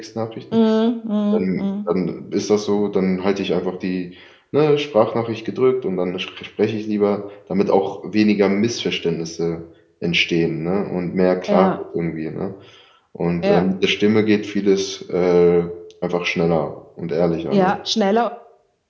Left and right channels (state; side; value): identical; both; correlation 1.00